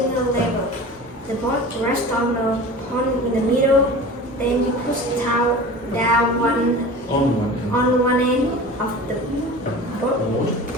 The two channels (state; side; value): normal; both; correlation 0.36